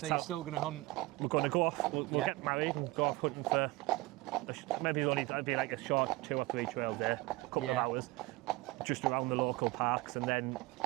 you're still going to hunt? We're going to go off, we'll get married and go off hunting for, maybe it'll be like a short 2 or 3 trail day, a couple of hours, just around the local parks, and then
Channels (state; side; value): quieter; left; 21.2 dB